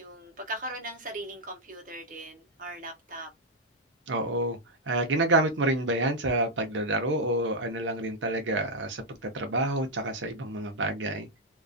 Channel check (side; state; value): both; normal; correlation -0.01